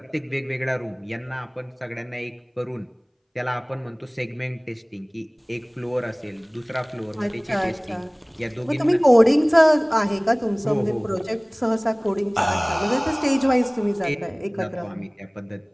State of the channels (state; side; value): identical; both; correlation 1.00